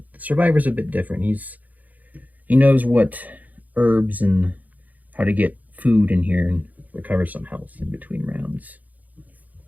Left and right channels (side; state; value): left; late; 0.079 ms